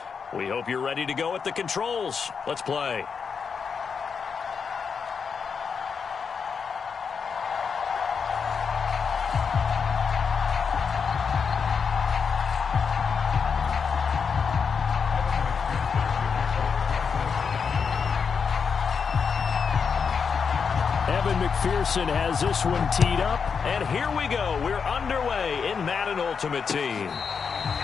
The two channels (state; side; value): quieter; right; 6.0 dB